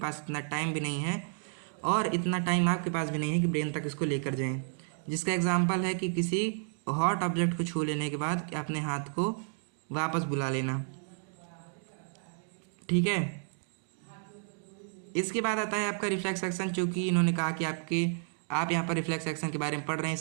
इतना टाइम भी नहीं है और इतना टाइम आपके पास भी नहीं है कि ब्रेन तक इसको लेकर जाएं। जिसका एग्जांपल है कि किसी हॉट ऑब्जेक्ट को छू लेने के बाद अपने हाथ को वापस बुला लेना। ठीक है, इसके बाद आता है आपका रिफ्लेक्स एक्शन, चूँकि इन्होंने कहा कि आप यहाँ पर रिफ्लेक्स एक्शन के बारे में पढ़ रहे हैं,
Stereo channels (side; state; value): left; silent; digital silence